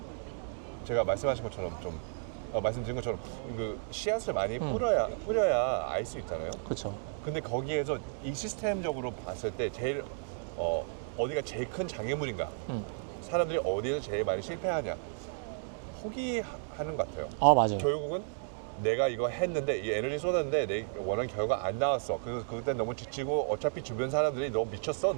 제가 말씀하신 것처럼 좀 말씀드린 것처럼 그 씨앗을 많이 뿌려야 알 수 있잖아요. 그렇죠. 근데 거기에서 이 시스템적으로 봤을 때 제일 어디가 제일 큰 장애물인가? 사람들이 어디에서 제일 많이 실패하냐? 포기하는 것 같아요. 맞아요. 결국은 내가 이거 했는데 이 에너지 쏟았는데 내 원하는 결과 안 나왔어. 그때 너무 지치고 어차피 주변 사람들이 너 미쳤어?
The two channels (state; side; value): silent; left; digital silence